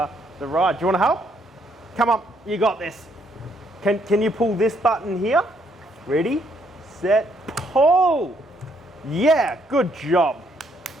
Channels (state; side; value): normal; both; correlation 0.71